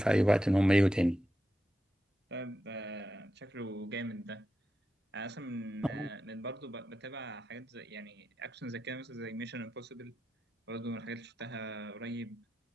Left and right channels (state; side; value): normal; both; correlation 0.88